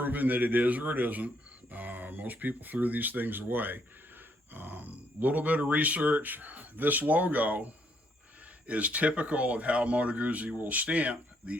that it is or it isn't. Most people threw these things away. Little bit of research. This logo is typical of how Moto Guzzi will stamp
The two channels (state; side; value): normal; both; correlation 0.71